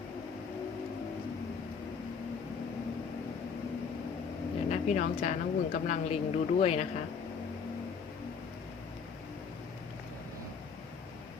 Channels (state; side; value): quieter; right; 5.9 dB